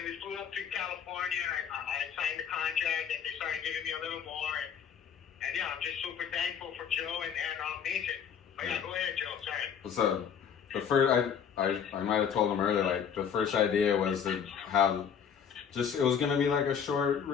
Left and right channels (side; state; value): right; quieter; 7.6 dB